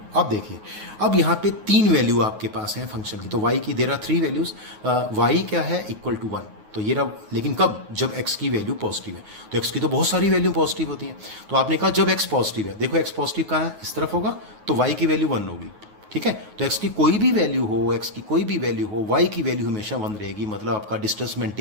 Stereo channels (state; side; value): late; left; 9.4 ms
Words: अब देखिए, अब यहाँ पे 3 वैल्यू आपके पास हैं फंक्शन की। तो y की देयर आर 3 वैल्यूज, y क्या है इक्वल टू 1, तो ये रहा, लेकिन कब, जब x की वैल्यू पॉजिटिव है। तो x की तो बहुत सारी वैल्यू पॉजिटिव होती हैं, तो आपने कहा जब x पॉजिटिव है, देखो x पॉजिटिव कहाँ है, इस तरफ होगा, तो y की वैल्यू 1 होगी, ठीक है। तो x की कोई भी वैल्यू हो, x की कोई भी वैल्यू हो, y की वैल्यू हमेशा 1 रहेगी, मतलब आपका डिस्टेंस